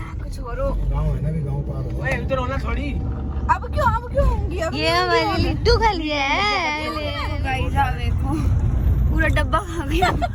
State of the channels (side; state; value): both; identical; correlation 1.00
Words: और हो। गाँव है ना, भी गाँव पार हो। ओए इधर होना थोड़ी। अब क्यों होंगी? ये हमारी लिट्टू खा लिया है। गाइस आप देखो, पूरा डब्बा खा गया।